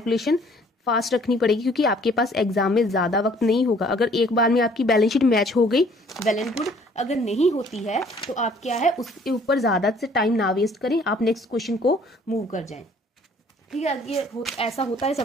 फास्ट रखनी पड़ेगी, क्योंकि आपके पास एग्जाम में ज़्यादा वक्त नहीं होगा। अगर एक बार में आपकी बैलेंस शीट मैच हो गई वेल एंड गुड, अगर नहीं होती है तो आप क्या है उसके ऊपर ज़्यादा से टाइम ना वेस्ट करें, आप नेक्स्ट क्वेश्चन को मूव कर जाएं। ठीक है, ये ऐसा होता है,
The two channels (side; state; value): both; normal; correlation 0.58